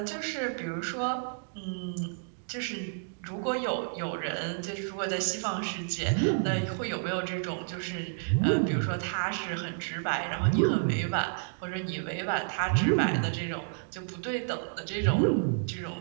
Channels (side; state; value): left; silent; digital silence